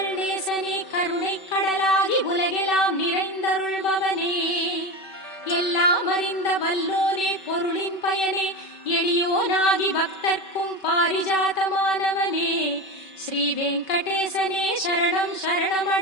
நேசனே கருணை கடலாகி உலகெல்லாம் நிறைந்தருள்பவனே. எல்லா எல்லாம் அறிந்த வல்லோனே பொருளின் பயனே எளியோனாகி பக்தர்க்கும் பாரிஜாதமானவனே ஸ்ரீ வெங்கடேசனே சரணம்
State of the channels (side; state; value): right; late; 5.2 ms